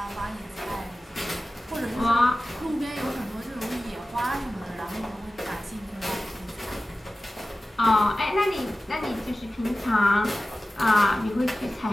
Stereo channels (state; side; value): normal; both; correlation 0.96